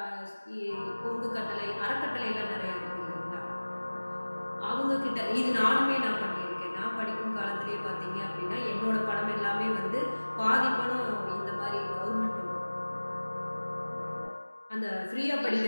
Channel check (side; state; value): both; inverted; correlation -1.00